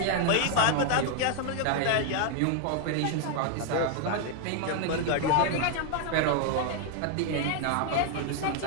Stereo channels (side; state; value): both; different; correlation 0.00